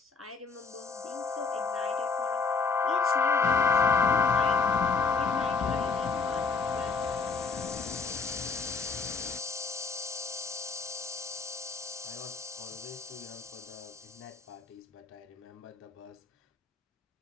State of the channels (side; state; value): right; quieter; 4.7 dB